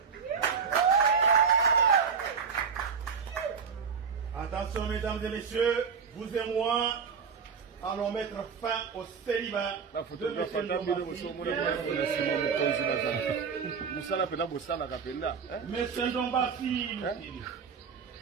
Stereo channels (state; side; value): quieter; left; 6.1 dB